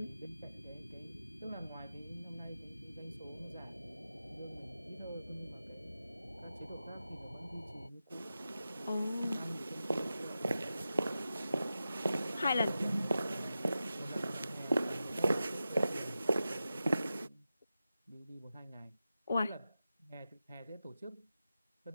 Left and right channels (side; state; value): both; inverted; correlation -0.92